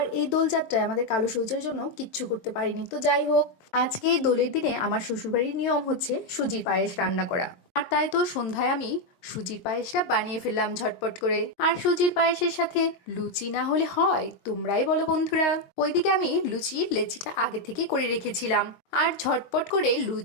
এই দোলযাত্রায় আমাদের কালো সূর্যের জন্য কিচ্ছু করতে পারিনি, তো যাই হোক। আজকে এই দোলের দিনে আমার শ্বশুরবাড়ির নিয়ম হচ্ছে সুজির পায়েস রান্না করা। আর তাই তো সন্ধ্যায় আমি সুজির পায়েসটা বানিয়ে ফেললাম ঝটপট করে। আর সুজির পায়েসের সাথে লুচি না হলে হয়? তোমরাই বলো বন্ধুরা। ওইদিকে আমি লুচির লেচিটা আগে থেকে করে রেখেছিলাম আর ঝটপট করে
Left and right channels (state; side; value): late; right; 22 ms